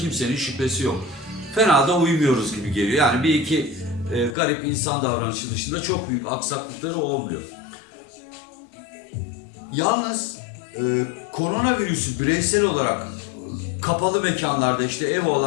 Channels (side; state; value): right; drops out; at 4.4 s